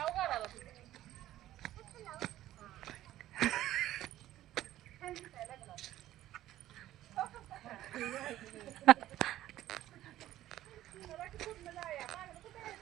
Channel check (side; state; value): left; quieter; 13.9 dB